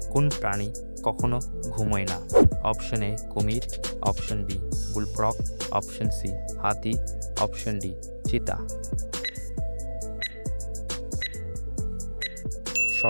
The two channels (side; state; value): both; inverted; correlation -1.00